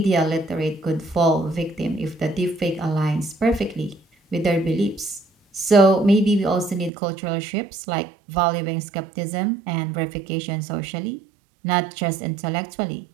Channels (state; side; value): drops out; left; at 6.9 s